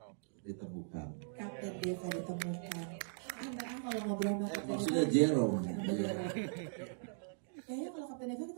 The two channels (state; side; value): silent; left; digital silence